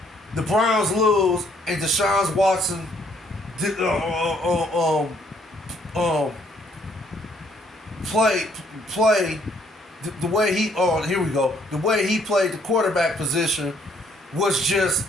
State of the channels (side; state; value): both; normal; correlation 0.66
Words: the Browns lose and Deshaun Watson did, play the way he here we go. The way he played the quarterback position was just